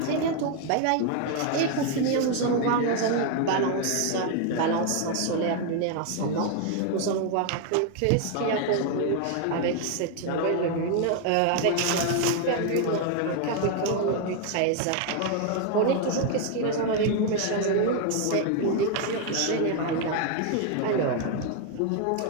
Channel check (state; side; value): different; both; correlation 0.01